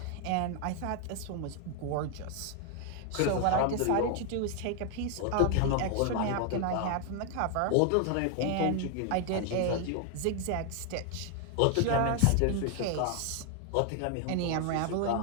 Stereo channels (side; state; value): both; different; correlation 0.00